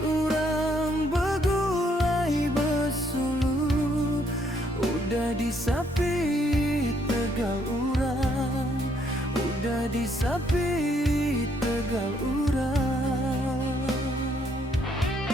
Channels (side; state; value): both; normal; correlation 0.70